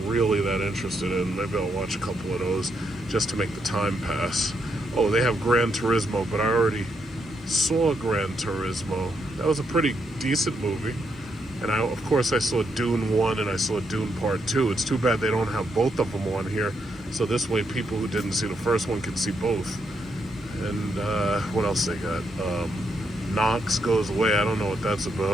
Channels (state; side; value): normal; both; correlation 0.78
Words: really that interested in. Maybe I'll watch a couple of those just to make the time pass. Oh, they have Gran Turismo, but I already saw Gran Turismo. That was a pretty decent movie. And of course I saw Dune 1 and I saw Dune Part 2. It's too bad they don't have both of them on here. So this way people who didn't see the first one can see both. And what else they got? Knox Goes Away. I don't know what that's